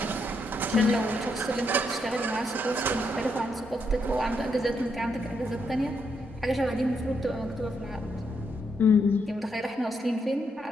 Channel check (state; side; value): normal; both; correlation 0.78